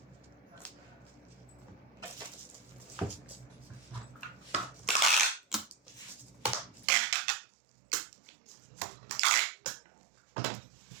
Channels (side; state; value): left; drops out; at 6.9 s